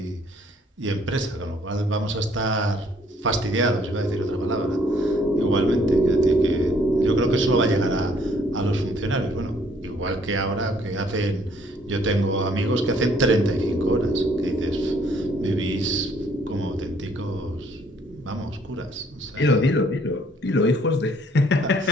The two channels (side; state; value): both; normal; correlation 0.63